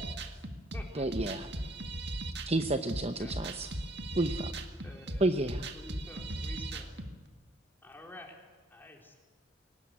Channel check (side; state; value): both; normal; correlation 0.65